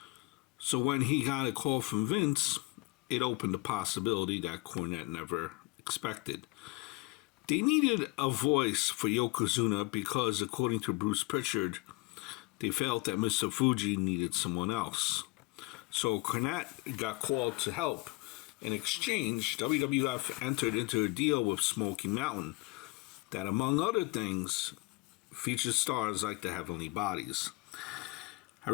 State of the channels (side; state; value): right; quieter; 24.4 dB